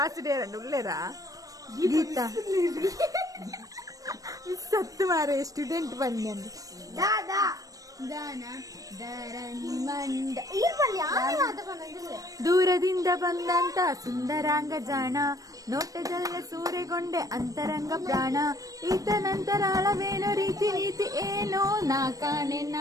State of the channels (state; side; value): late; left; 0.17 ms